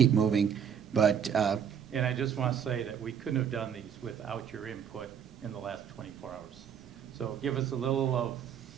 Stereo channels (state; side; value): quieter; left; 8.1 dB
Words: moving, but And I just want to say that we couldn't have done these without your input in the last 24 hours. So give us a little of